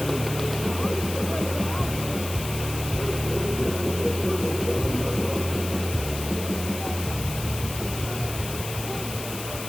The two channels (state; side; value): noise; left; hiss, 9 dB below the sound